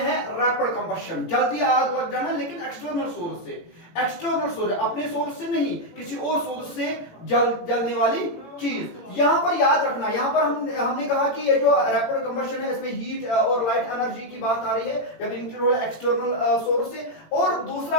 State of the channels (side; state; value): right; late; 18 ms